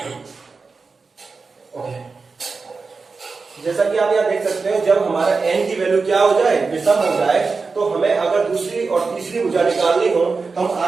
जैसा कि आप यहाँ देख सकते हो जब हमारा n की वैल्यू क्या हो जाए, विषम हो जाए, तो हमें अगर दूसरी और तीसरी भुजा निकालनी हो तो हम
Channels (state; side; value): quieter; left; 4.4 dB